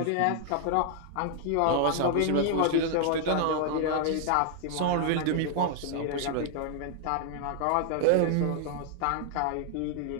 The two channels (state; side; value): different; both; correlation 0.00